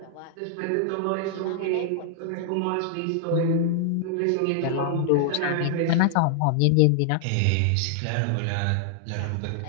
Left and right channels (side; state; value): both; different; correlation -0.01